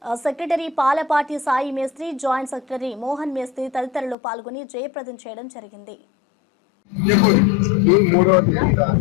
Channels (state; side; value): drops out; right; at 4.2 s